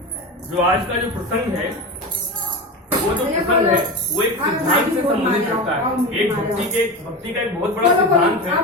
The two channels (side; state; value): both; normal; correlation 0.24